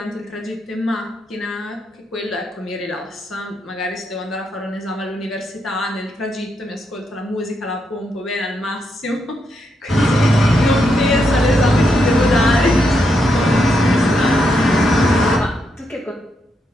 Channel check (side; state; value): both; normal; correlation 0.81